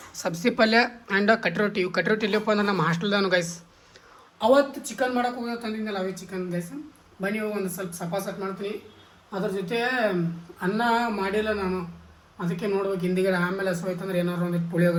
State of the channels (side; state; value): both; identical; correlation 1.00